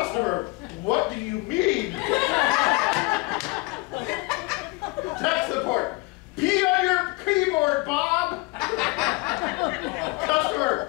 what do you mean? Tech support. P on your keyboard, Bob.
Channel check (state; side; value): quieter; right; 24.8 dB